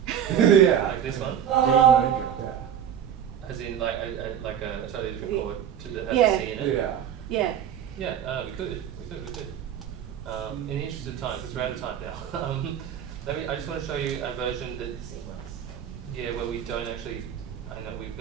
Yeah. Like this one? D major. Yeah. As in like a totally different chord to that has Yeah. a C in it? Yeah. Yeah. Yeah, we could. In the interest of time, because we're out of time now, I just want to show you a version that, yeah, where we don't actually, I know we're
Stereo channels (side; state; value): left; quieter; 9.2 dB